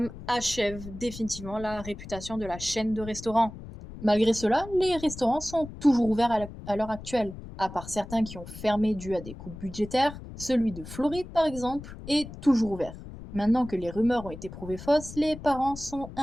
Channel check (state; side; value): noise; left; rumble, 13 dB below the sound